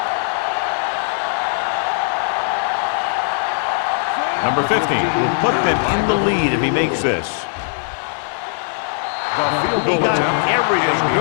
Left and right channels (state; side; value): silent; right; 65 dB below the other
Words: Number 50 will put them in the lead if he makes this. The field He goal got attempt everything